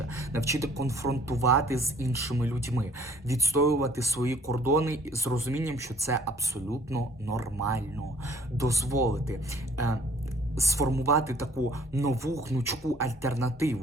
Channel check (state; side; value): normal; both; correlation 0.56